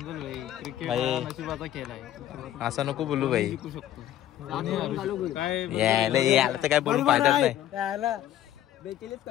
भाई? असं नको बोलू भाई. याला तर काय बोलून फायदा नाही.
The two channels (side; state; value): right; quieter; 12.2 dB